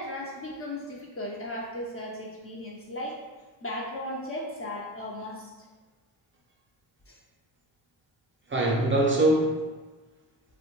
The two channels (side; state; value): both; normal; correlation 0.30